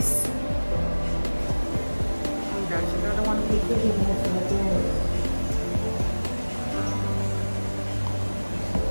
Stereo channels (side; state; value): both; inverted; correlation -1.00